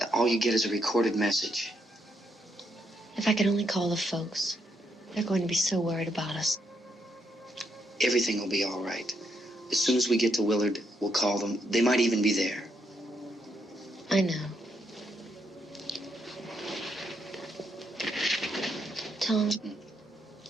All you get is a recorded message. If I could only call the folks. They're going to be so worried about us. Everything will be all right. As soon as we get to Willard, we'll call them. They might even be there. I know. Tom,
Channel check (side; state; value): both; normal; correlation 0.77